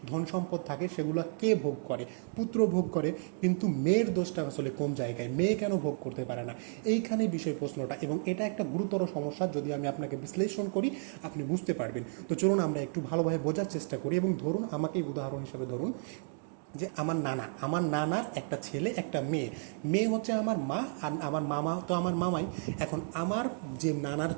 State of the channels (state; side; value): silent; left; 56 dB below the other